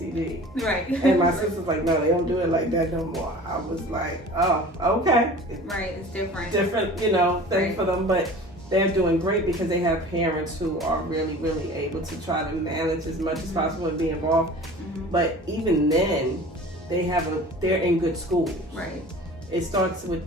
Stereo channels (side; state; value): right; noise; hum, 24 dB below the sound